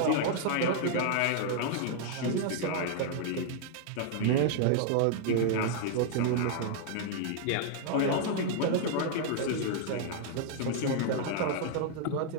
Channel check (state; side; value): different; both; correlation 0.00